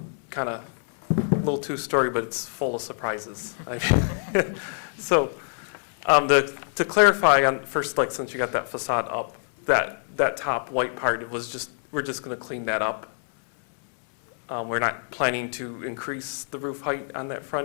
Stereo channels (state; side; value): silent; right; 61 dB below the other